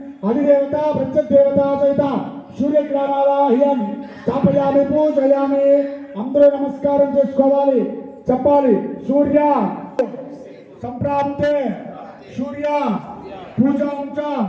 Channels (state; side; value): identical; both; correlation 1.00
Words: అధిదేవత ప్రత్యదేవత సహిత సూర్యగ్రామావాహ్యం స్థాపయామి పూజయామి. అందరూ నమస్కారం చేసుకోవాలి చెప్పాలి. సూర్య సంప్రాప్తే సూర్య పూజాంచ